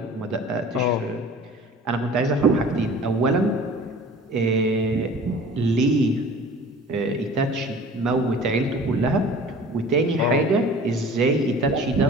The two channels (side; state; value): both; normal; correlation 0.44